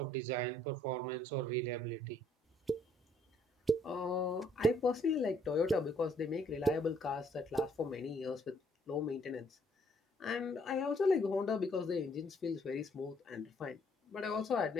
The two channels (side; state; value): both; normal; correlation 0.66